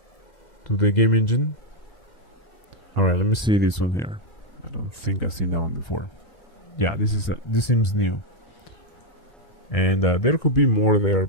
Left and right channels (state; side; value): late; right; 2.0 ms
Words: game engine. All right, let me see this one here. I don't think I've seen that one before. Yeah, this seems new. And there could be more there,